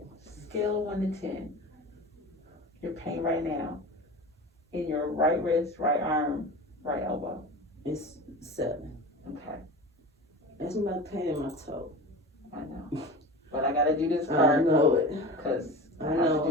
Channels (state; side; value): normal; both; correlation 0.33